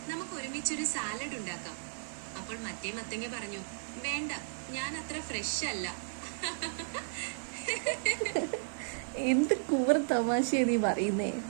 നമുക്ക് ഒരുമിച്ചൊരു സാലഡ് ഉണ്ടാക്കാം. അപ്പോൾ മറ്റേ മത്തങ്ങ പറഞ്ഞു, വേണ്ട, ഞാൻ അത്ര ഫ്രഷ് അല്ല. എന്ത് കൂറ തമാശയാ നീ പറയുന്നേ?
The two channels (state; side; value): silent; left; 55 dB below the other